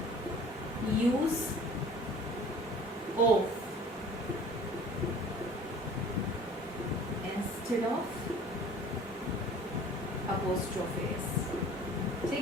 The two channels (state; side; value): normal; both; correlation 0.47